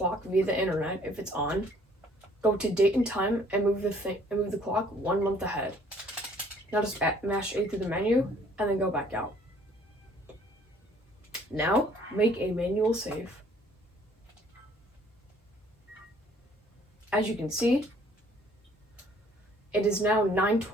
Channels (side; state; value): both; normal; correlation 0.59